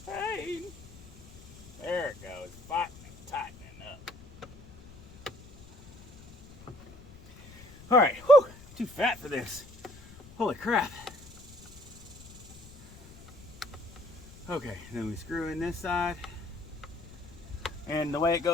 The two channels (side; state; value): left; noise; rumble, 20 dB below the sound